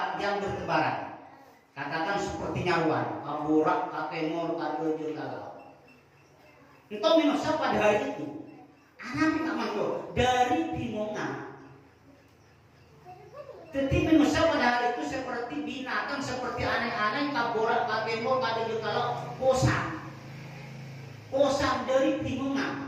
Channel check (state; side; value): identical; both; correlation 1.00